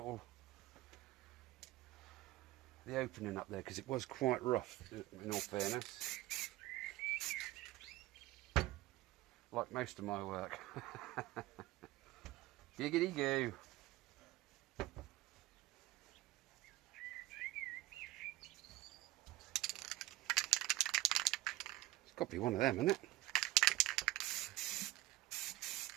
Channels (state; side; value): quieter; left; 17.4 dB